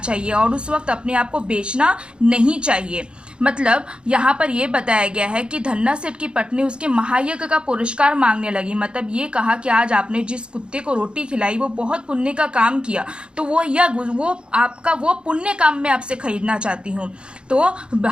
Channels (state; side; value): late; left; 0.054 ms